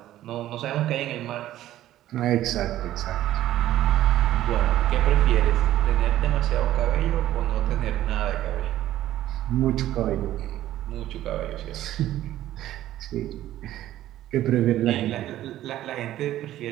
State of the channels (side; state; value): left; quieter; 13.6 dB